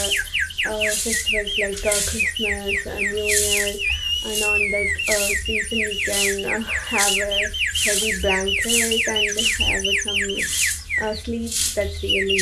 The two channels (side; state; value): both; identical; correlation 1.00